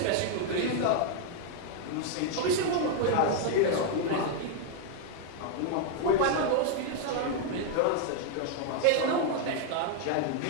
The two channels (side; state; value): both; different; correlation 0.00